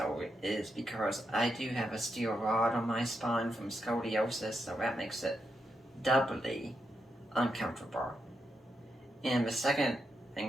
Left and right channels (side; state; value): both; normal; correlation 0.84